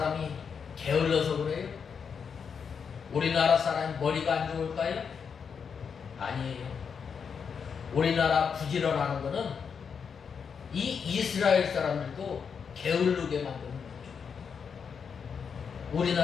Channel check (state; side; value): quieter; right; 6.5 dB